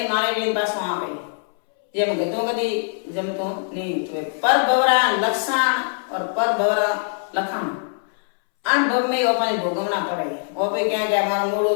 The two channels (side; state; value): right; silent; 64 dB below the other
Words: मारे रे पासो आवे जेम गतो कदी जमतो नहीं तो पर भवरा लक्षण और पर भवरा लखण अन भव में अपन भोगवना पड़े ओपे क्या के मारो मोड़ो